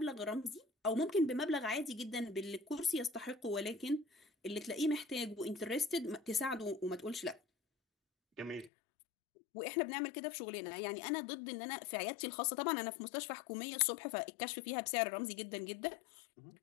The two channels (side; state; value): right; drops out; at 8.7 s